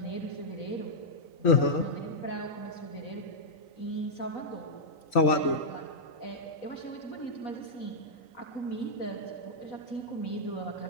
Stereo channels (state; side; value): late; right; 3.9 ms